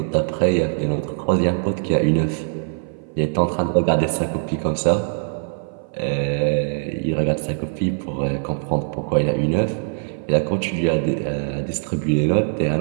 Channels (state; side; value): silent; left; 58 dB below the other